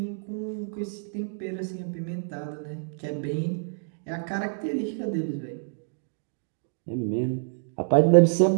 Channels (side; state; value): left; silent; digital silence